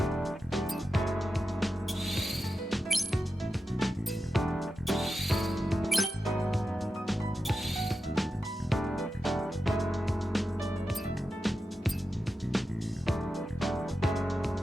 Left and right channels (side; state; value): both; normal; correlation 0.91